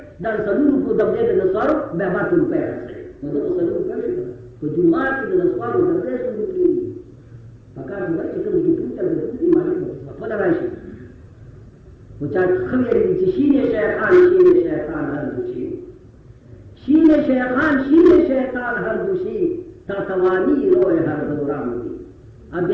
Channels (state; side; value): identical; both; correlation 1.00